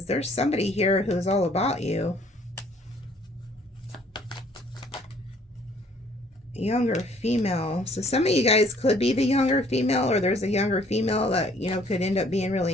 there's somebody here who's all about you. Younger female. So some of you guys could be the younger female, or there's a younger female that, you know, could end up being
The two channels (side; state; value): both; normal; correlation 0.60